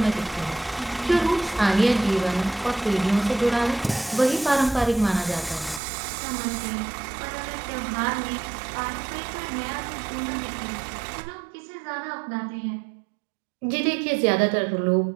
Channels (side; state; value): left; drops out; at 5.8 s